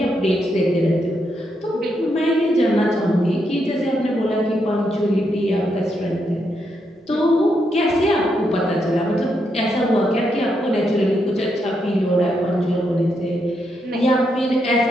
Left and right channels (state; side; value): normal; both; correlation 0.80